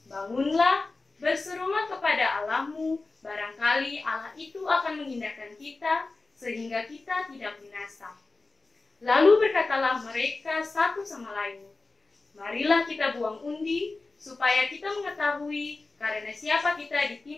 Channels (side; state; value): right; quieter; 3.6 dB